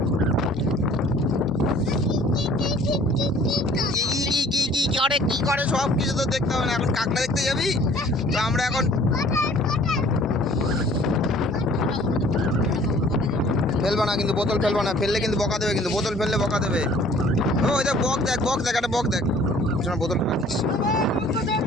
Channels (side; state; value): both; normal; correlation 0.53